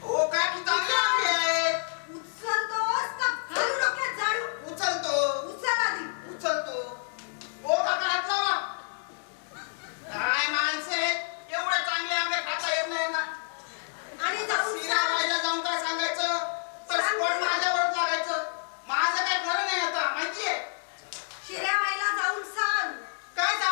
ओ काय की चांगले आंबे आहेत. उचलतोस का घालू डोक्यात झाडू? उचलतो उचल आधी. उचलतो. ओ काका हात लावा. काय माणसे एवढे चांगले आंबे खाता येत नाही ना. आणि जाऊन शिराबाईला जाऊन काय सांगायचं तर स्पॉट माझ्यावर लागायचं. माझं काय खरं नाही आता माहितीये. शिऱ्याबाईला जाऊन सांग. काय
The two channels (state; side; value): silent; right; digital silence